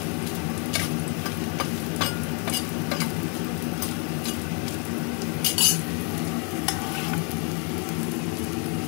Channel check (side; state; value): right; quieter; 36.8 dB